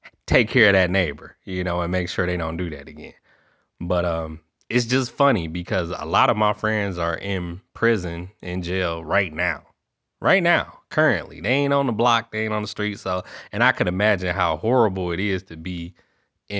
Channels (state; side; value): identical; both; correlation 1.00